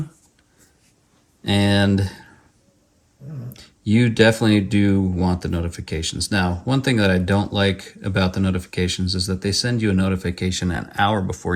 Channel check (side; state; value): both; identical; correlation 1.00